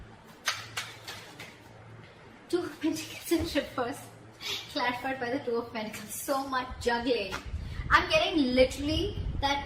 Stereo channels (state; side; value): identical; both; correlation 1.00